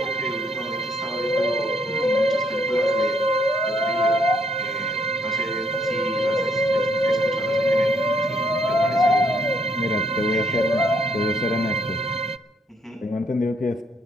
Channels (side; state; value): both; normal; correlation 0.70